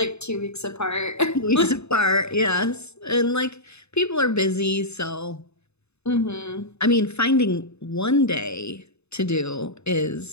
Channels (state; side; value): late; right; 0.80 ms